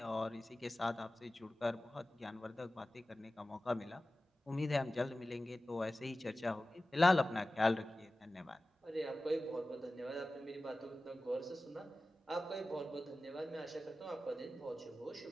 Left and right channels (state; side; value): normal; both; correlation 0.96